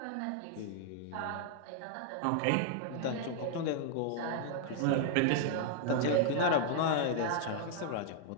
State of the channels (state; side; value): different; both; correlation 0.00